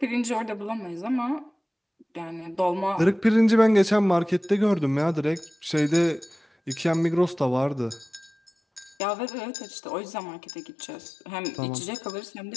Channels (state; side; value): drops out; right; at 9.0 s